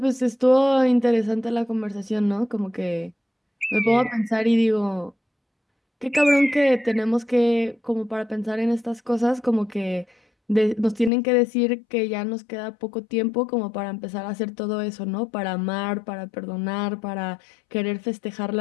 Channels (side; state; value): right; drops out; at 11.1 s